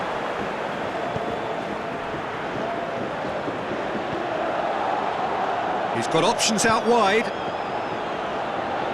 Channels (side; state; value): both; identical; correlation 1.00